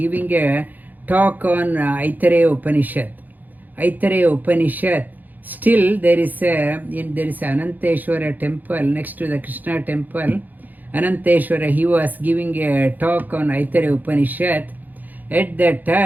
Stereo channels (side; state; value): left; late; 0.084 ms